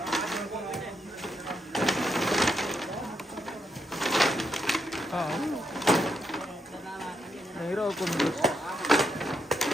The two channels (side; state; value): both; normal; correlation 0.80